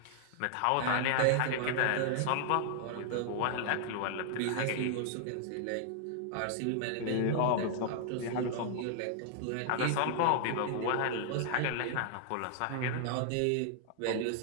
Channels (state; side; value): different; both; correlation 0.00